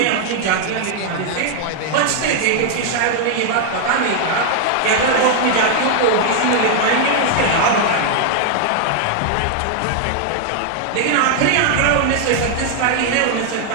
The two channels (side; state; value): both; different; correlation 0.00